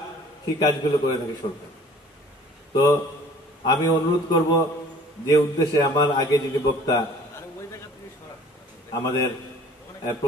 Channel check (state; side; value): normal; both; correlation 0.51